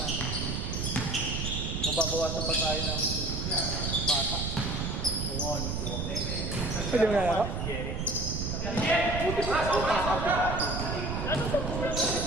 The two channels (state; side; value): noise; right; rumble, 2 dB below the sound